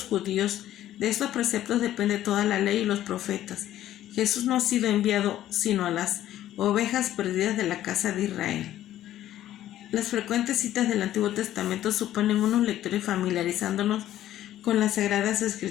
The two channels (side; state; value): right; quieter; 12.8 dB